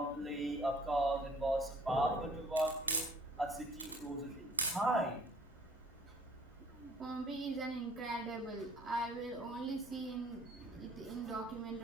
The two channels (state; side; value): noise; right; hum, 26 dB below the sound